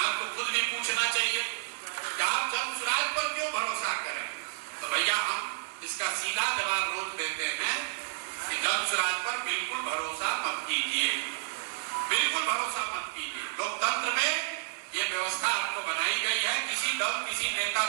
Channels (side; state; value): left; silent; digital silence